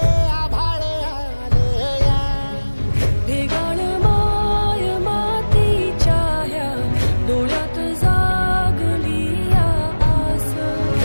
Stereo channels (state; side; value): inverted; both; correlation -1.00